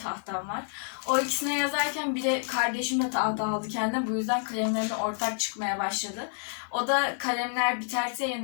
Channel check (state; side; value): silent; right; 59 dB below the other